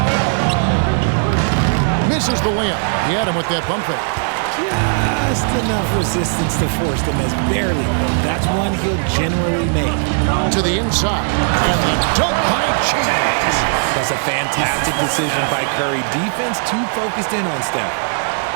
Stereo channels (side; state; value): left; silent; digital silence